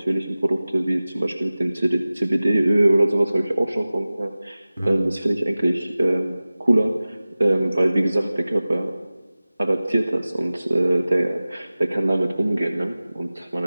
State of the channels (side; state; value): both; inverted; correlation -0.97